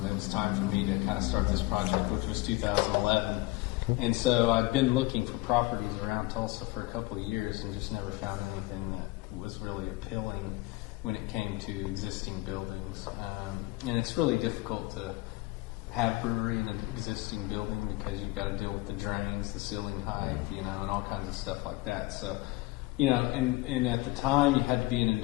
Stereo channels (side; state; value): right; quieter; 20.6 dB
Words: It was time for me to kind of start this project, which was 2011. And so I'd been looking for properties around Tulsa for a couple of years and just never found anything that was really appealing when it came to existing buildings. And it's really difficult to have brewery in an existing building because you got to deal with the drains, the ceiling height, you know, and all kinds of stuff like that. So, you know, and at the time you had to be in